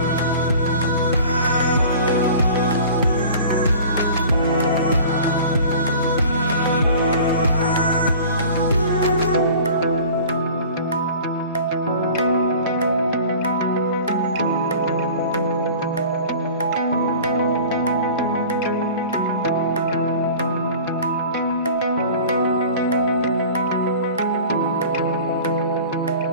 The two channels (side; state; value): both; inverted; correlation -0.42